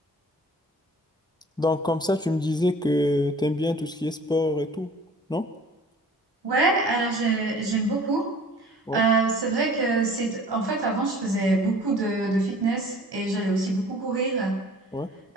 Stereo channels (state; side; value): normal; both; correlation 0.48